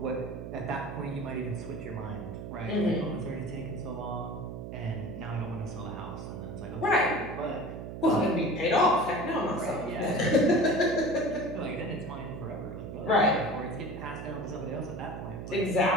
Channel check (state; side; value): noise; right; hum, 8 dB below the sound